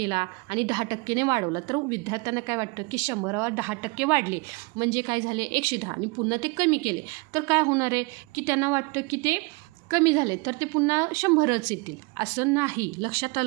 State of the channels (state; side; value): quieter; left; 28.6 dB